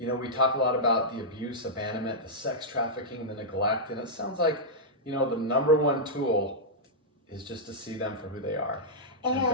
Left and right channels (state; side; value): normal; both; correlation -0.09